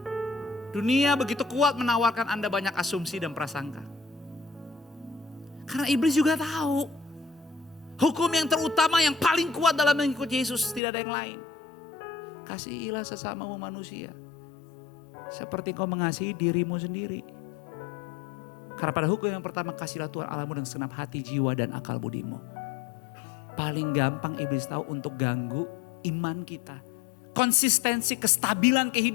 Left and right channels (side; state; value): right; drops out; at 10.8 s